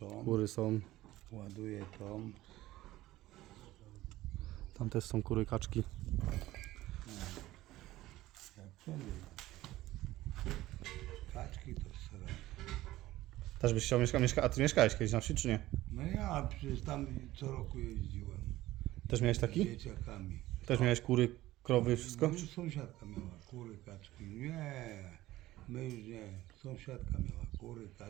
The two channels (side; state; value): left; quieter; 16.3 dB